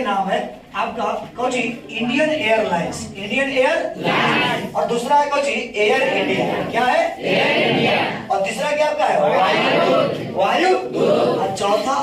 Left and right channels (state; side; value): identical; both; correlation 1.00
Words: नाम है आपका Cauchy? Indian airlines. Indian airlines. और दूसरा है कौची? Air India. क्या है? Air India. और तीसरा क्या आपका है? वायुदूत। और चौथा